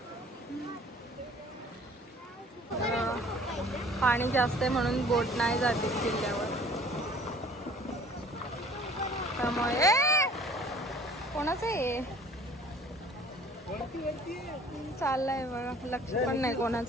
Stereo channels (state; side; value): normal; both; correlation 0.51